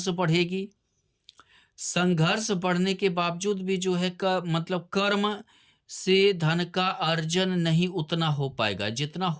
बढ़ेगी, संघर्ष बढ़ने के बावजूद भी जो है मतलब कर्म से धन का अर्जन नहीं उतना हो पाएगा जितना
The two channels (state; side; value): identical; both; correlation 1.00